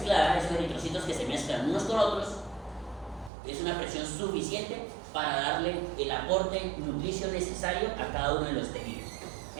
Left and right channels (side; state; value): left; drops out; at 3.3 s